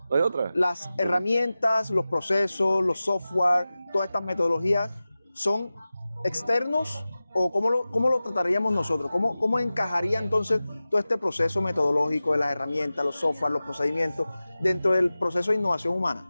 no hay otra. Las herramientas, los procesos, los software, todas estas metodologías son externos, o cómo lo trataríamos nosotros, cómo encajaría entonces todo este proceso metodológico de las herramientas, los software, los procedimientos dentro del proceso de innovación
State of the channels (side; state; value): both; inverted; correlation -0.96